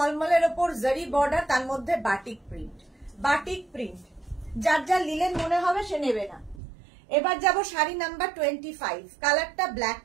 ওপর জারি বর্ডার, তার মধ্যে বাটিক প্রিন্ট। বাটিক প্রিন্ট যার যার লিলেন মনে হবে সে নেবে না। এবার যাব শাড়ি নাম্বার 25। কালারটা black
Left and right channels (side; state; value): left; drops out; at 6.6 s